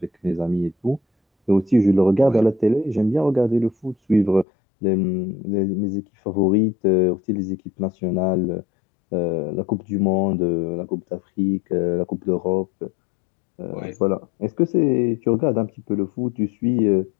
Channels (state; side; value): drops out; right; at 4.5 s